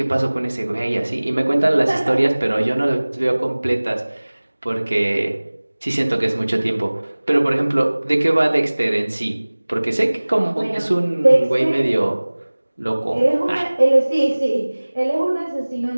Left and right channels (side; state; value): both; inverted; correlation -1.00